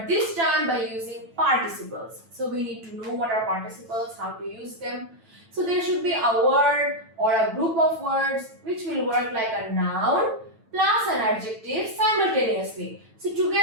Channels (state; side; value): late; left; 9.0 ms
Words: this time by using participles. So we need to know what are participles, how to use them. So there should be a word or a group of words which will work like a noun plus an adjective simultaneously. So